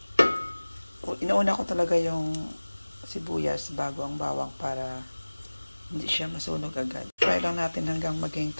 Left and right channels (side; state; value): both; inverted; correlation -1.00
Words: inauna ko talaga yung sibuyas bago ang bawang para hindi siya masunog agad. Try lang natin hanggang maging